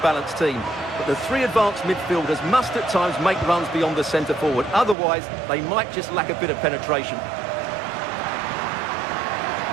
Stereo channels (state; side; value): drops out; left; at 5.0 s